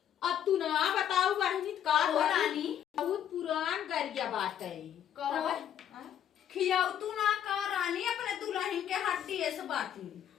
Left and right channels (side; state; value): right; quieter; 10.0 dB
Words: अब तू ना बताऊ बहनी का हो रानी बहुत पुरान गरिया बात है कहो खियाऊ तू ना का रानी अपने दुल्हन के हड्डी ऐसे बाटी।